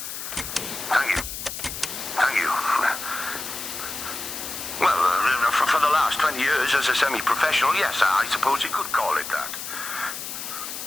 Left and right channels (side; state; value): left; noise; hiss, 7 dB below the sound